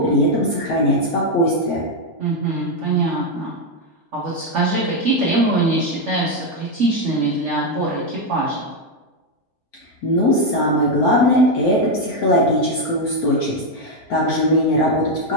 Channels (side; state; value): both; normal; correlation 0.04